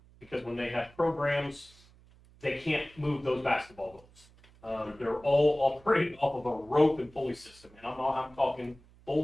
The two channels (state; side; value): noise; right; hum, 26 dB below the sound